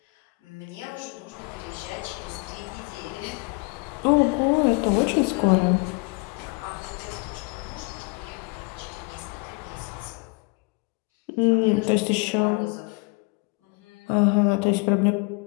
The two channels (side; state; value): right; quieter; 30.3 dB